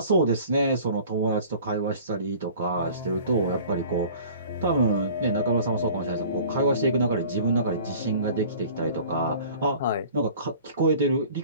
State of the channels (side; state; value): both; inverted; correlation -0.47